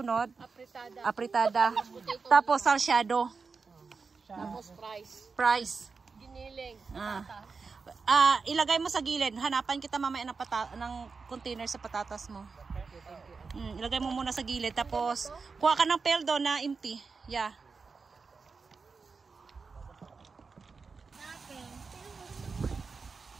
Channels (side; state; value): left; quieter; 4.7 dB